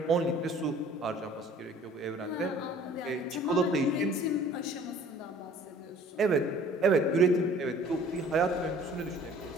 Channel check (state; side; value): normal; both; correlation 0.51